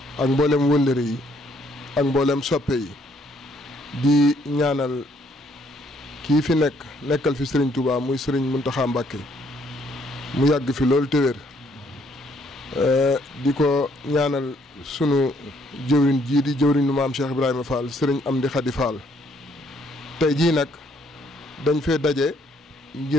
ak mboolem wëllëre yi ak mboolem soppe yi di ñaanal kii fi nekkal fi sëriñ Touba muy sëriñ Mountakha Mbacké mu yàgg fi loolu te wér di ko ñaanal sunu jëwriñ jii di jëwriñu maam Cheikh Ibrahima Fall sëriñ Amdi Khady Fall tey jii nag dañ fee daje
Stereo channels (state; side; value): normal; both; correlation 0.67